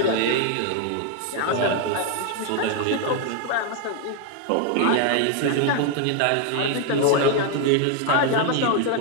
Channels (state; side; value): different; both; correlation 0.01